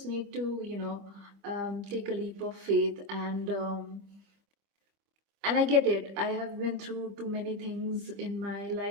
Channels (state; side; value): late; left; 25 ms